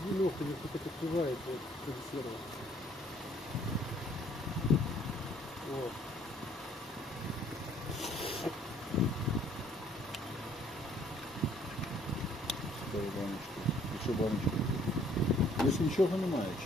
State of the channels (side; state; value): both; normal; correlation 0.61